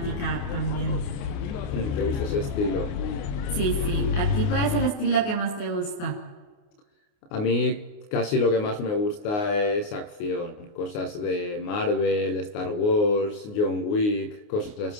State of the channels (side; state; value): right; late; 28 ms